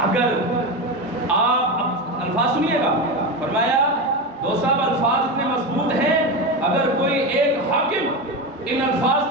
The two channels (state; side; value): normal; both; correlation 0.18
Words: اگر آپ الفاظ سنیے گا، فرمایا دو صاحب الفاظ اتنے مضبوط ہیں، اگر کوئی ایک حاکم ان الفاظ